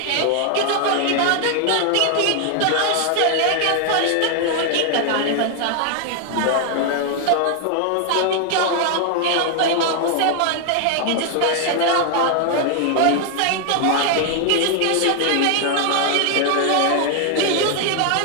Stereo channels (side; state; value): both; different; correlation 0.00